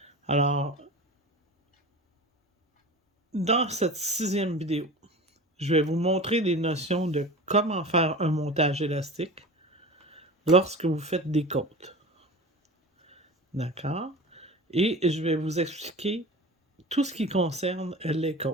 Alors, dans cette 6e vidéo, je vais vous montrer des notions de comment faire un montage élastique lorsque vous faites des côtes. D'accord? Et je vais vous expliquer tout ce qui concerne les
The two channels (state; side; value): normal; both; correlation 0.34